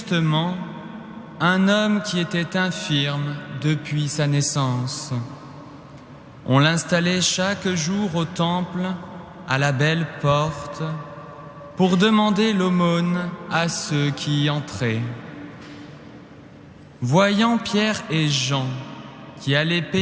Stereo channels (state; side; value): identical; both; correlation 1.00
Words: un homme qui était infirme depuis sa naissance. On l'installait chaque jour au temple, à la belle porte, pour demander l'aumône à ceux qui y entraient. Voyant Pierre et Jean qui allaient